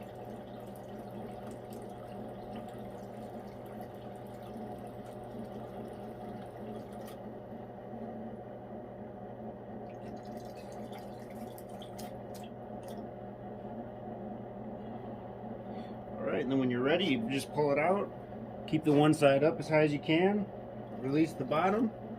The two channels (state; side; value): identical; both; correlation 1.00